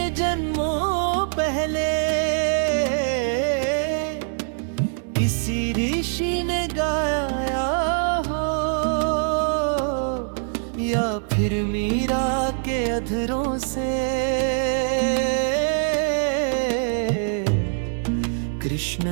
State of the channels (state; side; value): silent; left; digital silence